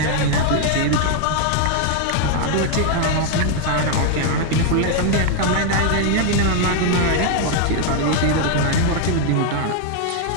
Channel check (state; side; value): different; both; correlation 0.00